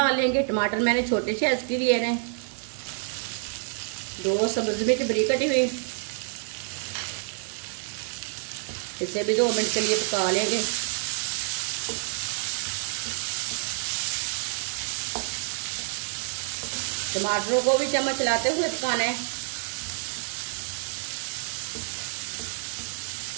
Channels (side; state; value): left; silent; 60 dB below the other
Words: लेंगे। टमाटर मैंने छोटे साइज के लिए हैं। 2 सब्ज मिर्च बारीक कटी हुई। इसे भी 2 मिनट के लिए पका लेंगे। टमाटरों को भी चम्मच चलाते हुए पकाना है।